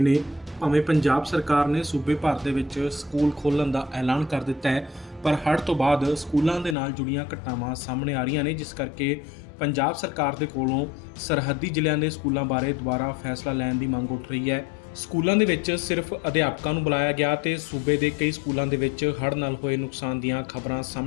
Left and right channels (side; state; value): right; drops out; at 6.8 s